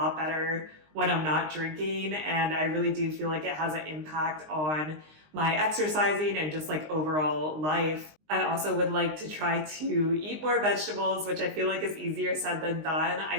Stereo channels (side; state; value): left; late; 19 ms